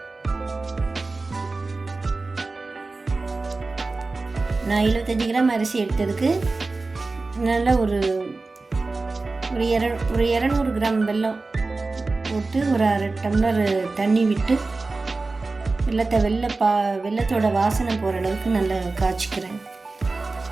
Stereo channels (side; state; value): left; quieter; 3.6 dB